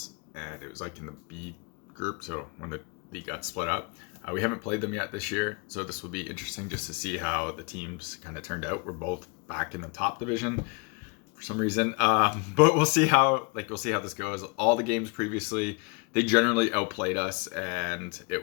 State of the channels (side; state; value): right; quieter; 31.2 dB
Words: and it was like in the B group. So when the league got split up, we haven't played them yet this year. So this will be interesting just to see how the teams kind of turned out. We're both back in the top division for some reason, but we'll see how this goes. All the games previously, they generally outplayed us, and